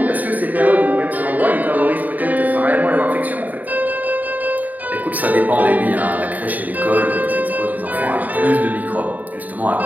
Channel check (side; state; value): left; late; 0.079 ms